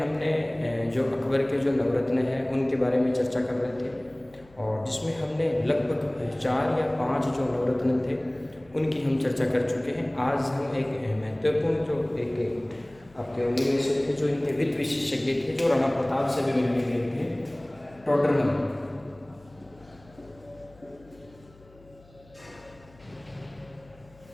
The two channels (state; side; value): noise; left; hum, 26 dB below the sound